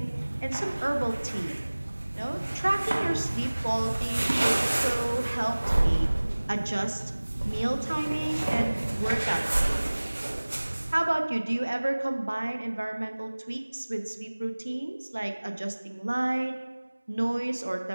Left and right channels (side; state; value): both; inverted; correlation -1.00